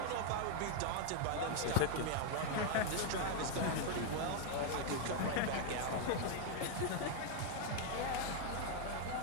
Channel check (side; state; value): both; different; correlation 0.00